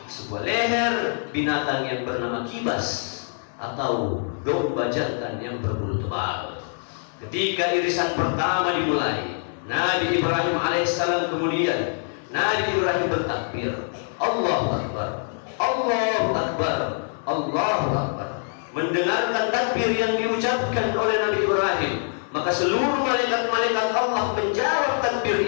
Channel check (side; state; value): right; silent; 62 dB below the other